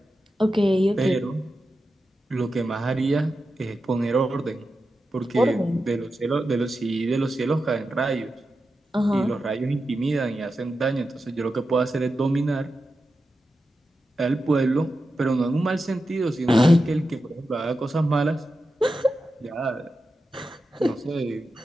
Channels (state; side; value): normal; both; correlation 0.90